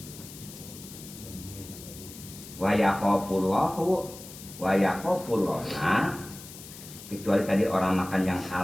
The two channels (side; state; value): left; noise; hiss, 15 dB below the sound